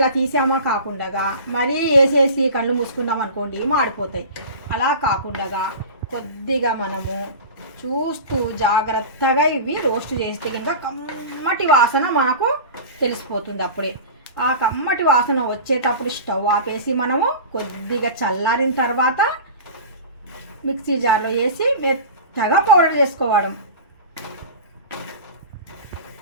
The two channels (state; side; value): inverted; both; correlation -0.33